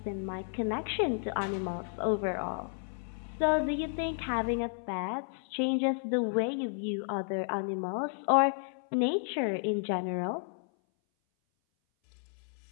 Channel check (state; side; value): silent; right; 56 dB below the other